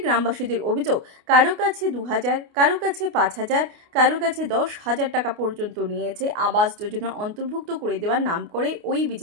গ্রামবাসীদের অভিযোগ, কারো কাছে 2000, কারো কাছে 5000, কারো কাছে 10,000 টাকা পর্যন্ত নিয়েছে আবাস যোজনা অন্তর্ভুক্ত করে দেওয়ার নাম করে ওই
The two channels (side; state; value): left; late; 29 ms